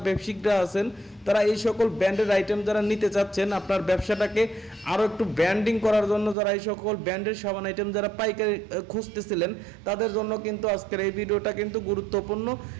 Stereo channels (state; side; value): drops out; left; at 6.4 s